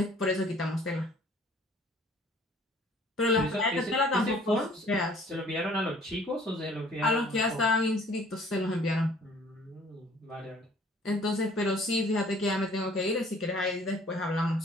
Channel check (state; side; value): normal; both; correlation 0.54